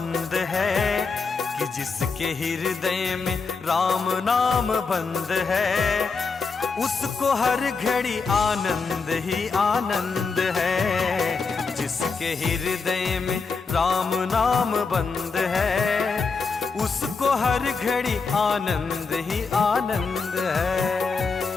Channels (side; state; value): right; quieter; 4.7 dB